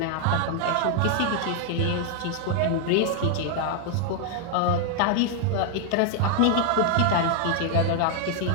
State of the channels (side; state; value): both; different; correlation 0.00